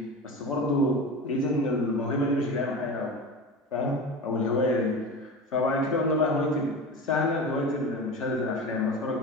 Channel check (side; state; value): both; normal; correlation 0.30